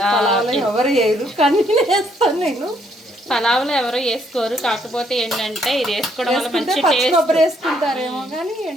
ఎవరు వేయరు కానీ వేస్తాను నేను. పలావులో ఎవరు వేసుకోరు, కాకపోతే ఏంటంటే ఇది వేసుకోవడం వల్ల మంచి టేస్ట్. కొబ్బరి వేసుకుంటారేమో కానీ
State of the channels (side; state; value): both; normal; correlation 0.70